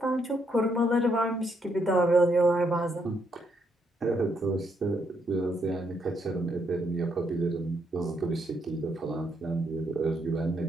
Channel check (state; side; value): normal; both; correlation 0.76